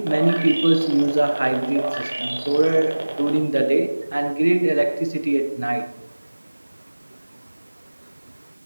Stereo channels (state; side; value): inverted; both; correlation -1.00